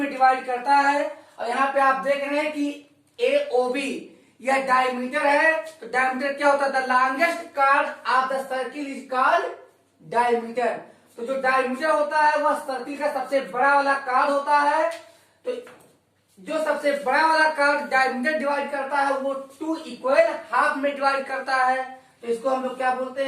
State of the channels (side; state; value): both; identical; correlation 1.00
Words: डिवाइड करता है। और यहाँ पे आप देख रहे हैं कि एओबी यह डायमीटर है, तो डायमीटर क्या होता है, the longest card of the circle is called diameter. तो जो डायमीटर होता है वह सर्किल का सबसे बड़ा वाला कार्ड होता है। तो जो सबसे बड़ा वाला कार्ड डायमीटर डिवाइड करता है वो 2 इक्वल हाफ में डिवाइड करता है, तो इसको हम लोग क्या बोलते